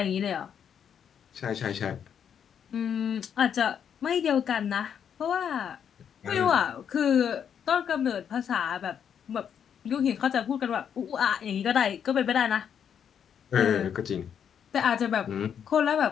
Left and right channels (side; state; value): right; quieter; 8.2 dB